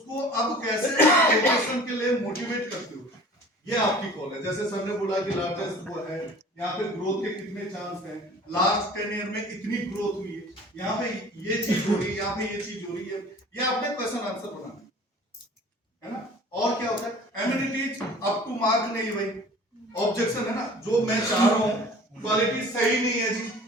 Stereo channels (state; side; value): normal; both; correlation 0.46